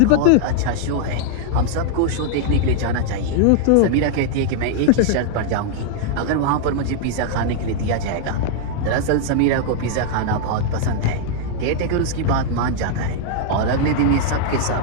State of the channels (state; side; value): different; both; correlation -0.01